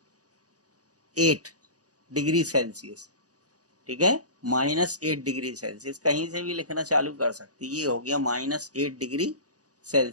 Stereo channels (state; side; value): late; left; 0.67 ms